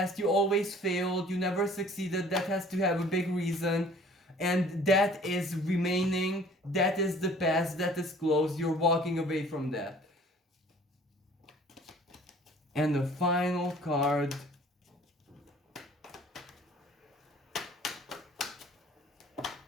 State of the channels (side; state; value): both; normal; correlation 0.51